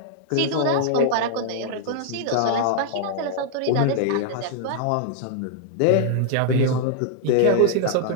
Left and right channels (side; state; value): both; different; correlation -0.01